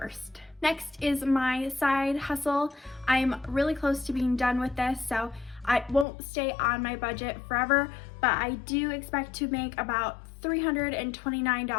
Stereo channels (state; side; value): drops out; right; at 6.1 s